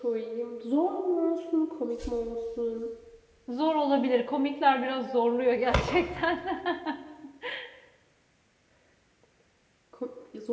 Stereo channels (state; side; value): identical; both; correlation 1.00